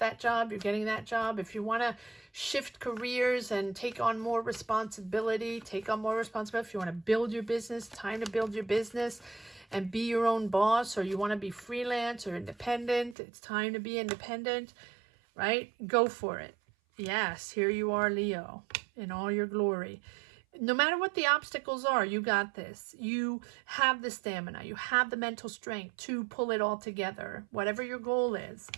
job, you're getting that job. If you want to shift careers and take on more responsibility, take on more responsibility. If you want to build your business, time to build your business and be your own boss, or you want to be freelance or independent, it's time to be independent, right? Go for it. Yes, here you are, Leo, in all your glory. No matter what the obstacles are, you got this. You have the stamina. You have the mental strength to pull it all together. Whatever your goal is,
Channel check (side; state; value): left; drops out; at 13.2 s